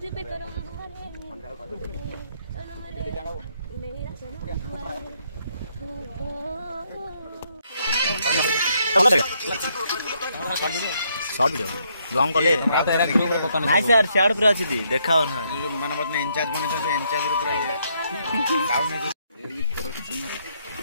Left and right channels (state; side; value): inverted; both; correlation -0.73